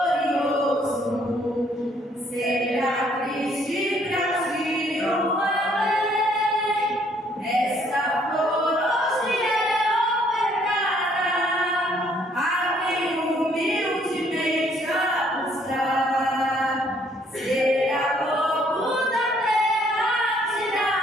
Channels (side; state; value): both; normal; correlation 0.65